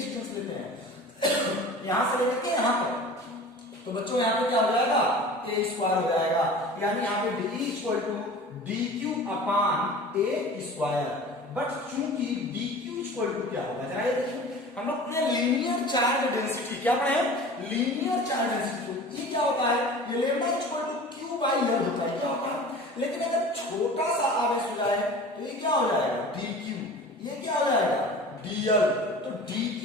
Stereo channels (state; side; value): normal; both; correlation 0.39